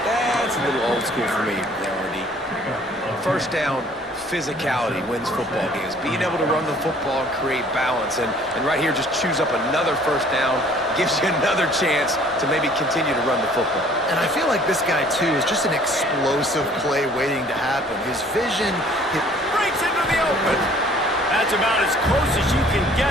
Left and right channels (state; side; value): normal; both; correlation 0.55